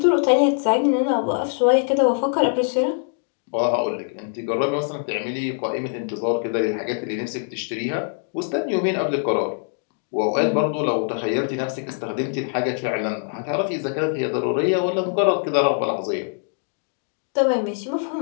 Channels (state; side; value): silent; right; 63 dB below the other